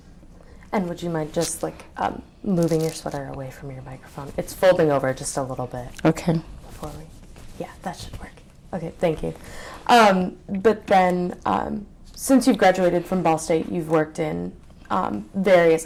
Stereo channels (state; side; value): identical; both; correlation 1.00